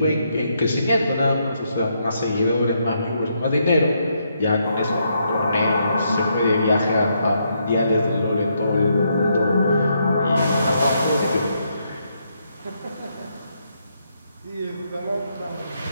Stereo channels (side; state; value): both; inverted; correlation -0.77